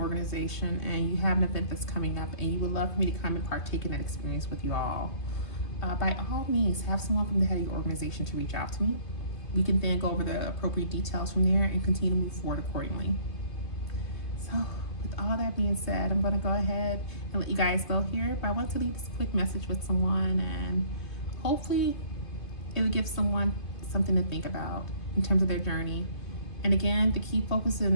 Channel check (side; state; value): right; late; 2.5 ms